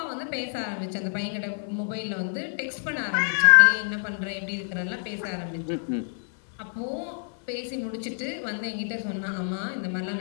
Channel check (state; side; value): silent; right; digital silence